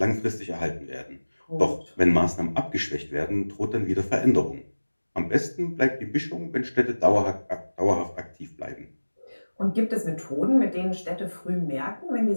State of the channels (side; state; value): both; inverted; correlation -1.00